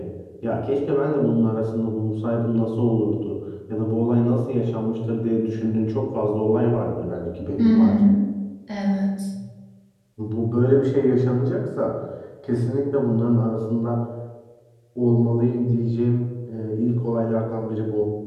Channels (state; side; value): identical; both; correlation 1.00